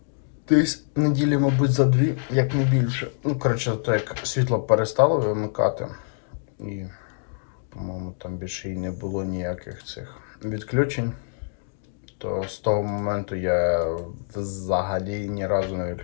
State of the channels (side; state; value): right; silent; digital silence